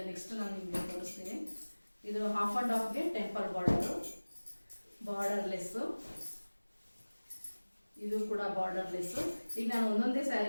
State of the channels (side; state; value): both; inverted; correlation -1.00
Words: ನೆಕ್ಸ್ಟ್ ನಾನು ನಿಮ್ಗೆ ತೋರಿಸ್ತೀನಿ. ಇದು ಹಾಫ್ ಅಂಡ್ ಹಾಫ್ಗೆ ಟೆಂಪಲ್ ಬಾರ್ಡರ್ಲೆಸ್. ಇದು ಕೂಡ ಬಾರ್ಡರ್ಲೆಸ್. ಈಗ ನಾನು ಒಂದೊಂದೇ